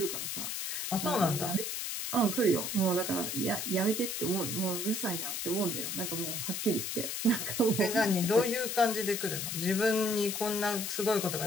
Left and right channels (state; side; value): noise; left; hiss, 3 dB below the sound